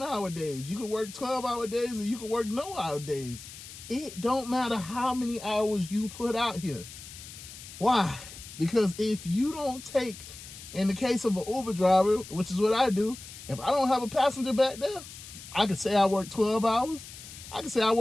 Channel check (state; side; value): noise; left; hiss, 15 dB below the sound